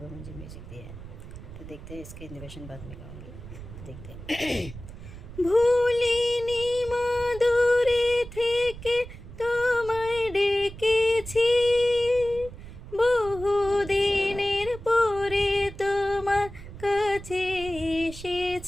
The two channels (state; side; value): noise; right; rumble, 14 dB below the sound